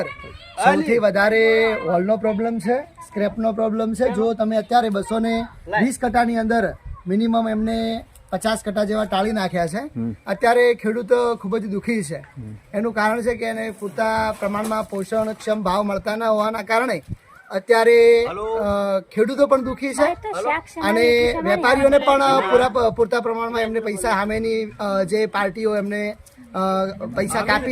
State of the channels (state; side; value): identical; both; correlation 1.00